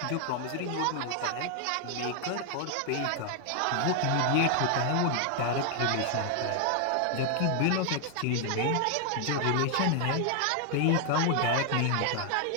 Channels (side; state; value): both; different; correlation 0.00